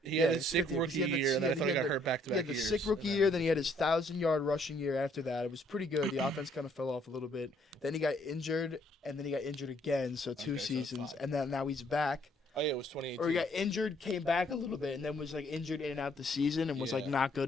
He yeah, had his it's sick fifth year, 'cause rookie he had the- year, and he then I thought he had got the- hurt back to he back had the years. sick rookie year. Then he had his 1,000-yard rushing year after that. It was pretty good. The offense kind of fell off a little bit. Then he got injured, and then he got injured again. So 2 Okay, so seasons, 5. and then now he's back. Oh yeah, it was 2018. Or he got injured, came back a little bit, and then was like injured in and out the season, and was like Yeah. not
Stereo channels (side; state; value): both; normal; correlation 0.65